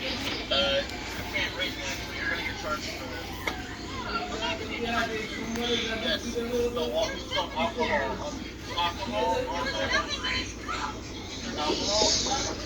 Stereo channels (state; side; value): identical; both; correlation 1.00